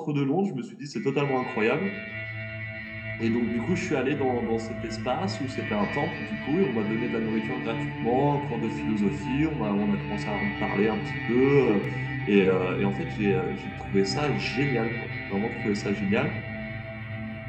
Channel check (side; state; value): both; identical; correlation 1.00